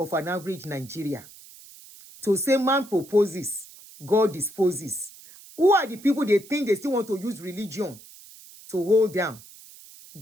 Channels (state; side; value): noise; right; hiss, 20 dB below the sound